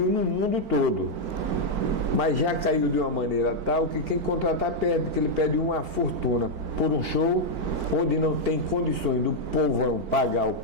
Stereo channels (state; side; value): late; left; 4.4 ms